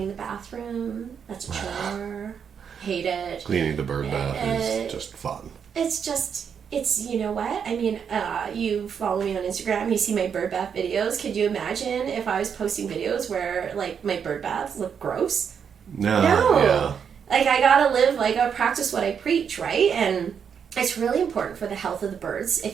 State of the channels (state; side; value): quieter; left; 7.2 dB